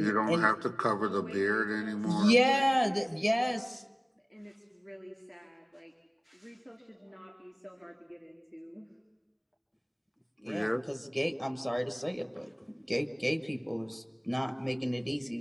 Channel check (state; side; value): identical; both; correlation 1.00